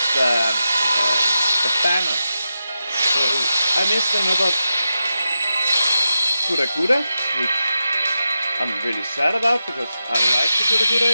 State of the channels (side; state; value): both; inverted; correlation -0.89